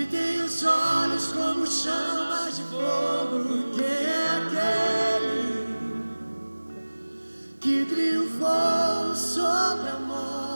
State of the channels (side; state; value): both; inverted; correlation -1.00